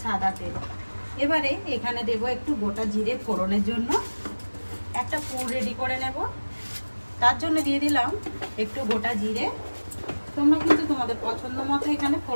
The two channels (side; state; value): both; inverted; correlation -1.00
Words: সাদা তেল। এবারে এখানে দেবো একটু গোটা জিরে ফোড়নের জন্য। একটা পুর রেডি করে নেব, তার জন্য দিয়ে দিলাম একটু গোটা জিরে। তোমরা কিন্তু তোমাদের পছন্দ মতো এখানে